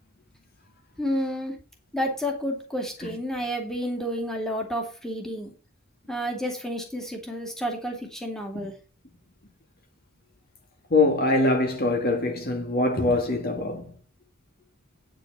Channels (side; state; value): both; normal; correlation 0.37